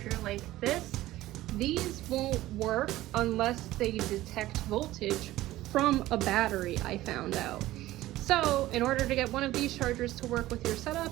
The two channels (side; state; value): left; quieter; 16.0 dB